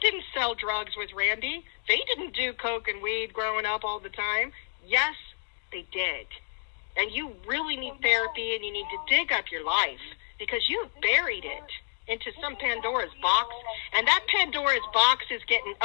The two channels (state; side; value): silent; right; 59 dB below the other